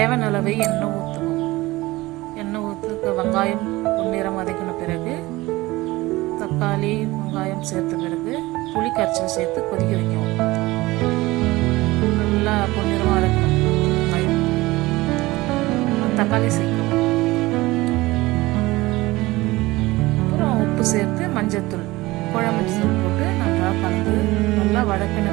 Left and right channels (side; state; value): left; quieter; 19.8 dB